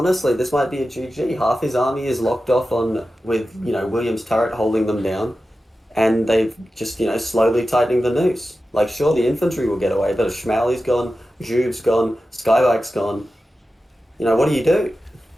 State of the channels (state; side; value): normal; both; correlation 0.93